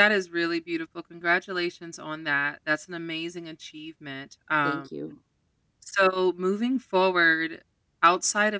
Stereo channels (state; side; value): identical; both; correlation 1.00